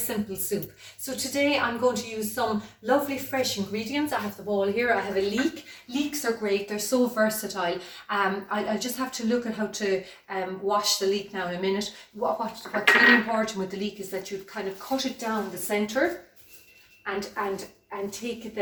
soup. So today I'm going to use some lovely fresh ingredients. I have the bowl here, I have a leek. Leeks are great, they're so versatile. I'll just have to look at how to wash the leek now in a minute. What's really important with the leek is that you kind of cut it down the centre and take it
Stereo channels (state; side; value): identical; both; correlation 1.00